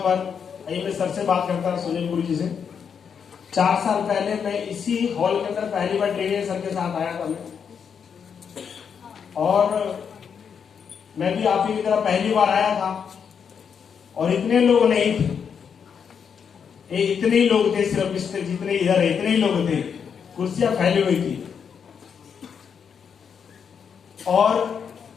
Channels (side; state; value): right; quieter; 7.0 dB